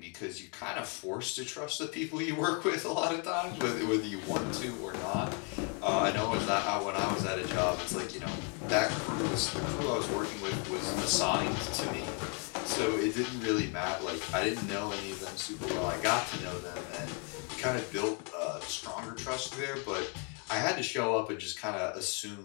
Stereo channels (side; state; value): right; quieter; 34.5 dB